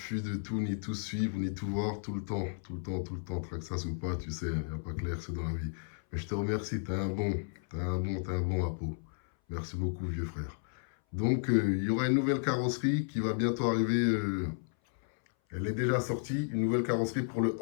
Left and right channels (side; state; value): right; silent; 56 dB below the other